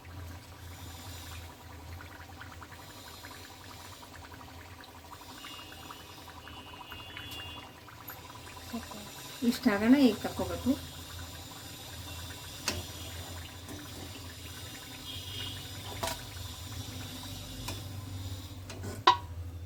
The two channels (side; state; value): both; identical; correlation 1.00